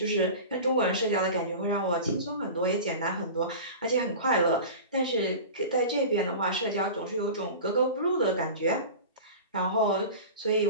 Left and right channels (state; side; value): inverted; both; correlation -0.33